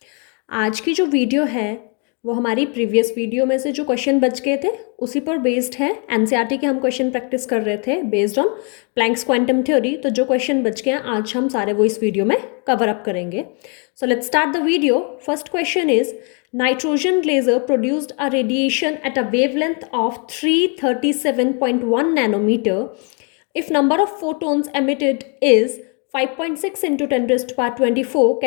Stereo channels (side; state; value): right; quieter; 37.2 dB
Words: आज की जो वीडियो है वो हमारी प्रीवियस वीडियो में से जो क्वेश्चन बच गए थे उसी पर बेस्ड है। एनसीईआरटी के हम क्वेश्चन प्रैक्टिस कर रहे थे based on Planck's quantum theory. तो जो क्वेश्चन बच गए हैं आज हम सारे वो इस वीडियो में कवर अप करेंगे। So let's start the video. First question is nitrogen laser produced a radiation at a wavelength of 337.1 nanometer if number of photons emitted is 5.6 into 10 raised to power 24